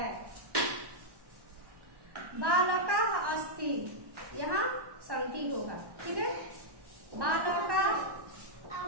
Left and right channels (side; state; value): left; late; 1.1 ms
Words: बालका अस्ति, यहाँ संति होगा, ठीक है। बालका